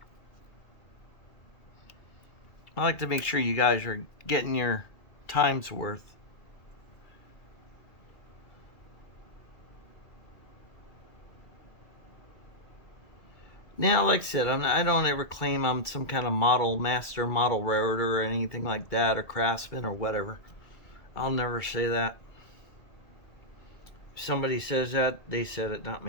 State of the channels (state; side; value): late; right; 2.3 ms